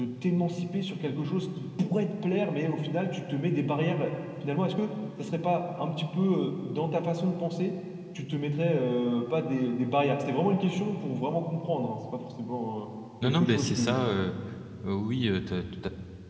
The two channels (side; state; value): both; identical; correlation 1.00